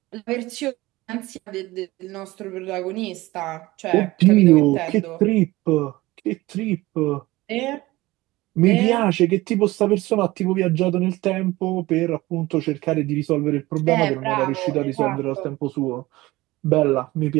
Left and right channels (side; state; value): left; quieter; 19.3 dB